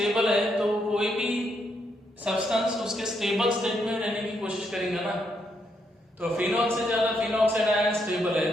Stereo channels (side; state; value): both; normal; correlation 0.78